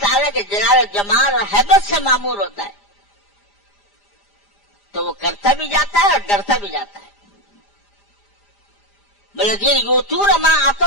کے جلال و جمال اور ہیبت سے معمور ہوتا ہے، تو وہ کرتا بھی جاتا ہے اور ڈرتا بھی جاتا ہے۔ والذین یؤتون ما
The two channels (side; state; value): right; late; 4.9 ms